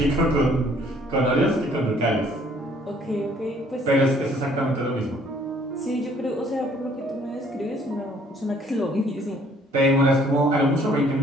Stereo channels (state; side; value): normal; both; correlation 0.60